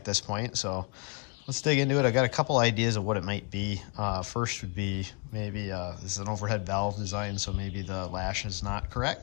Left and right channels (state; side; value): quieter; right; 34.6 dB